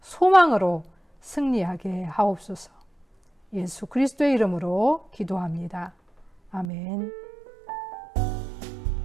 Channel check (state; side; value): drops out; left; at 6.7 s